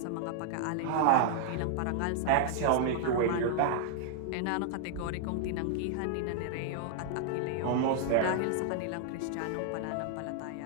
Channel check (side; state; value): both; different; correlation -0.01